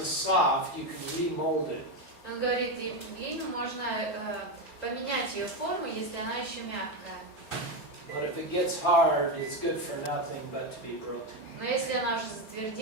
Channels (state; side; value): late; right; 4.3 ms